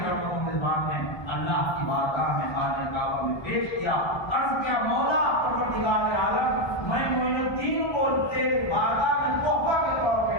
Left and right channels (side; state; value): right; late; 1.2 ms